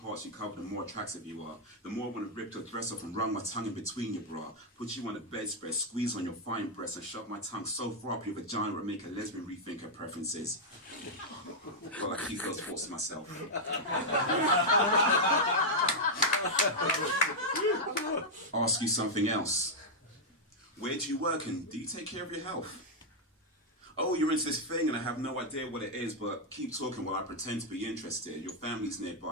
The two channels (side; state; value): both; normal; correlation -0.04